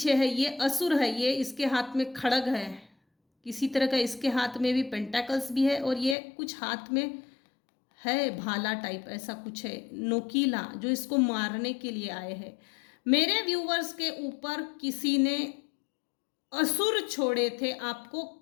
है ये असुर है, ये इसके हाथ में खड़ग है किसी तरह का, इसके हाथ में भी पेंटाकल्स भी है, और ये कुछ हाथ में है भाला टाइप, ऐसा कुछ है नोकीला, जो इसको मारने के लिए आए हैं। मेरे व्यूवर्स के ऊपर किसी ने असुर छोड़े थे आपको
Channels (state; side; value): drops out; right; at 6.2 s